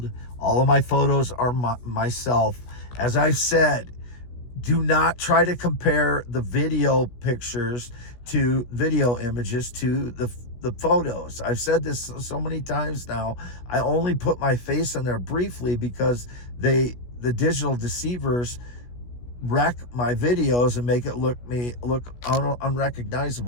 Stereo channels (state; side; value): late; right; 16 ms